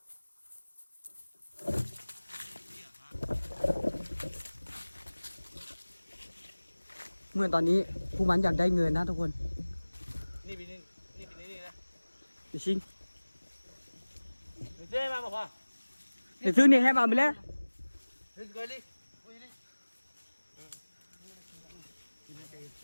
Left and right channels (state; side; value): inverted; both; correlation -1.00